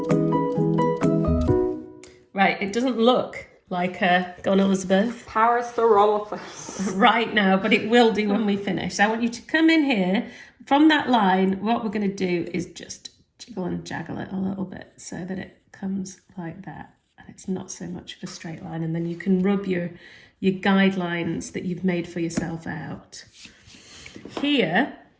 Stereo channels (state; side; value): identical; both; correlation 1.00